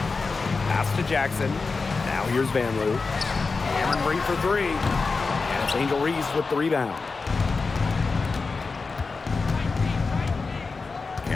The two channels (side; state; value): right; quieter; 4.3 dB